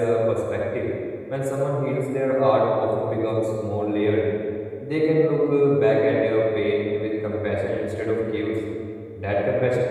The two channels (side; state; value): both; identical; correlation 1.00